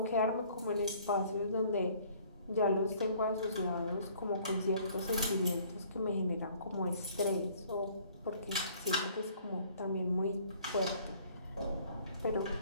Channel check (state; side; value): inverted; both; correlation -0.57